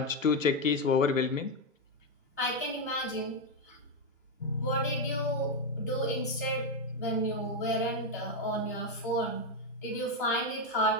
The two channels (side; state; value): both; normal; correlation 0.06